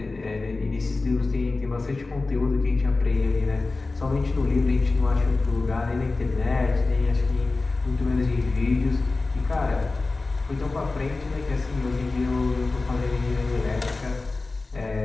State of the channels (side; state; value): right; quieter; 3.5 dB